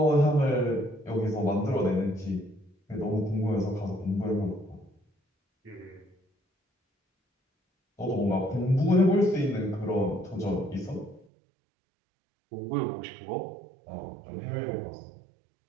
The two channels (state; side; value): drops out; left; at 11.2 s